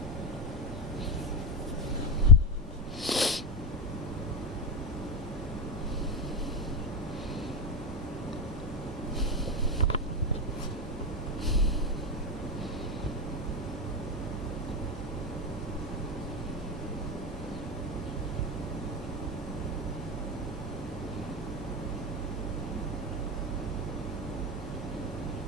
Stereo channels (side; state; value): both; normal; correlation 0.11